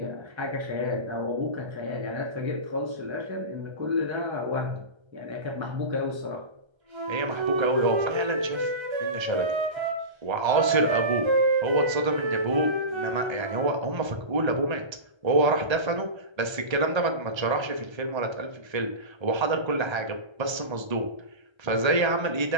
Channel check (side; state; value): left; late; 1.3 ms